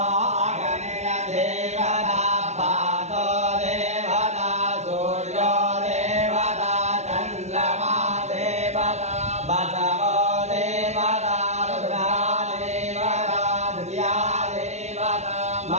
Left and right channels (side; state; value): left; late; 0.32 ms